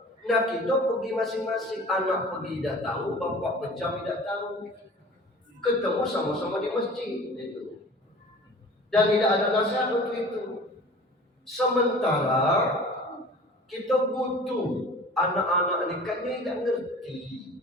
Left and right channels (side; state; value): both; normal; correlation 0.43